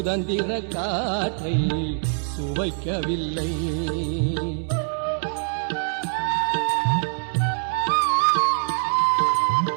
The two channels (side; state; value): left; silent; digital silence